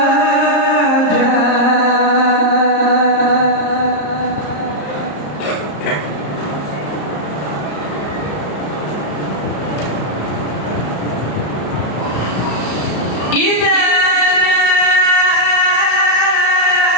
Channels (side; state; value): right; late; 34 ms